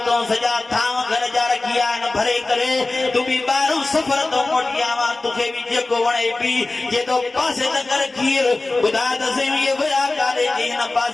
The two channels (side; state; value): right; quieter; 3.1 dB